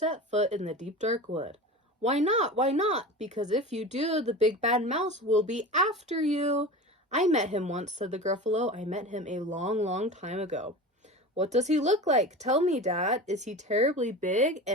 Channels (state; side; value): normal; both; correlation 0.31